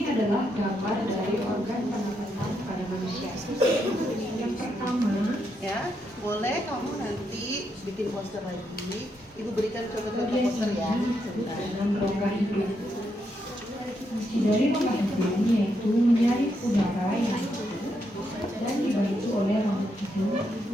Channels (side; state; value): both; normal; correlation 0.80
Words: adalah gambar dari organ pernapasan pada manusia. Yang pertama, Ya, boleh kamu nanti bikin poster lagi. Ibu berikan contoh-contoh poster ya. Sebentar. dengan rongga hidung. Fungsi dari rongga hidung yaitu menyaring udara yang masuk dan dibantu oleh rongga hidung.